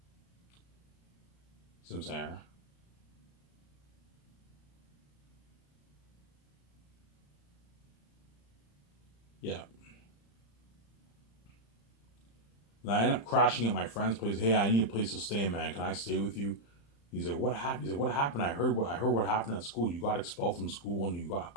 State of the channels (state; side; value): late; right; 35 ms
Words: See what I'm saying? Yeah. And I end up crashing at my friend's place. Hey, I need a place to stay, man. Can I stay with you? He's like, what happened? He's like, what happened? I heard what happened at school. You got expelled from school and you got